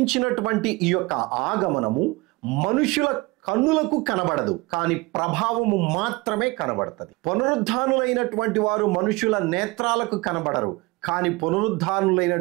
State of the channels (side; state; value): left; quieter; 23.8 dB